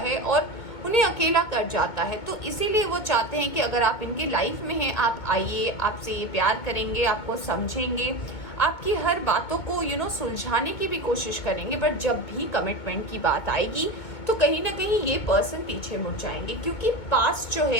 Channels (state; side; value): late; right; 2.2 ms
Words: और उन्हें अकेला कर जाता है। तो इसीलिए वो चाहते हैं कि अगर आप इनकी लाइफ में हैं, आप आइए, आपसे ये प्यार करेंगे, आपको समझेंगे, आपकी हर बातों को सुलझाने की भी कोशिश करेंगे, बट जब भी कमिटमेंट की बात आएगी तो कहीं ना कहीं ये पर्सन पीछे मुड़ जाएंगे, क्योंकि पास्ट जो